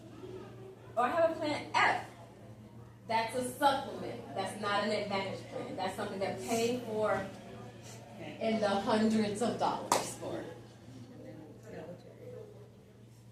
or I have a plan F, that's a supplement. That's not an Advantage plan. That's something they're paying for in the hundreds of dollars for.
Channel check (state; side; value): identical; both; correlation 1.00